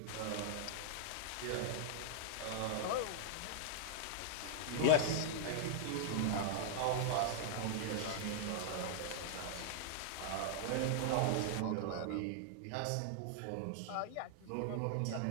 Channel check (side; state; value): both; different; correlation -0.01